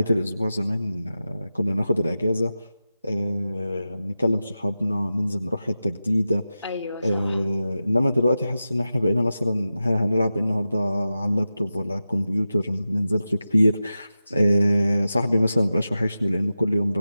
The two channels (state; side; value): inverted; both; correlation -0.93